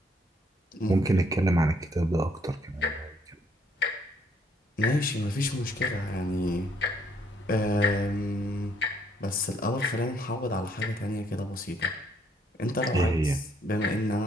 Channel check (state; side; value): normal; both; correlation 0.67